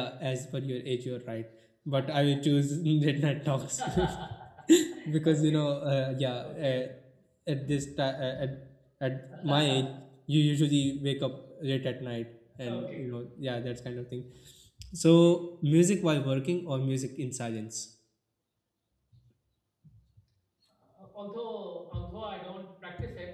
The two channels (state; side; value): identical; both; correlation 1.00